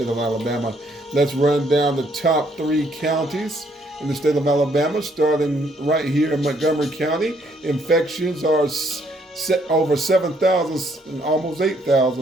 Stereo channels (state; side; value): normal; both; correlation 0.69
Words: of Alabama. Let's run down the top 3 counties in the state of Alabama, starting right here in Montgomery County. Infections are over 7,000 and almost